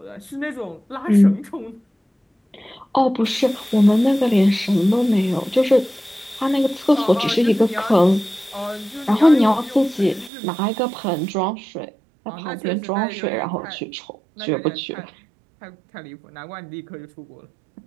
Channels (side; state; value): left; drops out; at 10.3 s